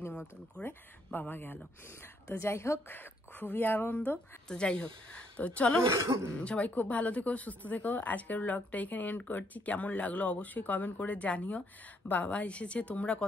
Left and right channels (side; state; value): both; normal; correlation 0.71